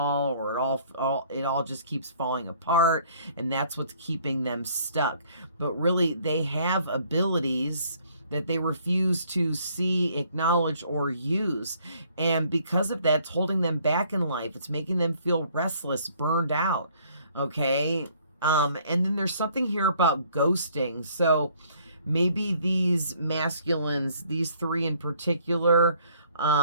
or it all just keeps falling apart, and that's what's keeping them stuck. But really, they have abilities that they refuse to see, acknowledge, or use. And because of that, it's holding them back in life. It's making them feel restless, burned out. Okay. And then there's something here about ghosting. So maybe these masculines, these three in particular,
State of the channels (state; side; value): inverted; both; correlation -0.61